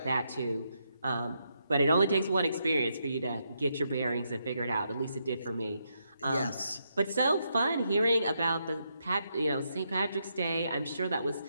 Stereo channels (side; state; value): both; inverted; correlation -0.80